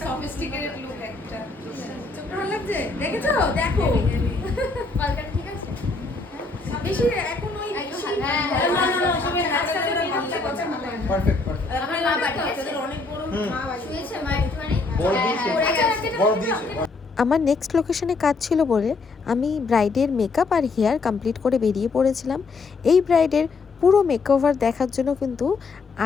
সফিস্টিকেটেড লুক একটা। চোখটা ভালো লাগছে? দেখেছো? দেখো কলকাতা ঠিক আছে? বেশি এখন ওই একটু বেশি- হ্যাঁ, না, না, না, ওসবের হাতটা হাতটা বের ভালো করতে লাগছে। কথা বলে। Perfect perfect. আমার মা পাঠিয়েছে। তাদের অনেক বড় মা বাড়ি। শুয়েছে মা একটুখানি? বড় হ্যাঁ, দিয়েছে। পড়ে আচ্ছা, গেছে। রাখি বড় দাও, দিয়েছে। রাখি দাও। আমার নেক্সট লোকেশনে কাজ ছিল বলে আমি ব্রাইডের মেকআপ আর হেয়ার কমপ্লিট করে বেরিয়ে পড়েছিলাম। এই ব্রাইডের পুরো মেকওভার দেখার জন্য কিন্তু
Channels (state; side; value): quieter; right; 4.0 dB